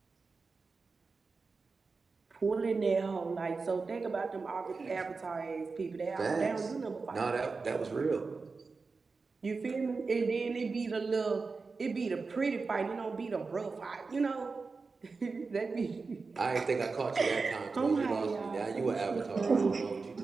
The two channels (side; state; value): left; quieter; 4.3 dB